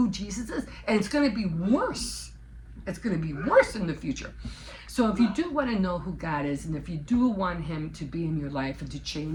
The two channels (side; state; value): both; identical; correlation 1.00